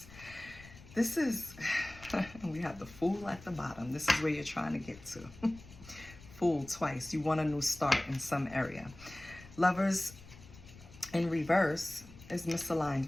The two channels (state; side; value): noise; left; rumble, 19 dB below the sound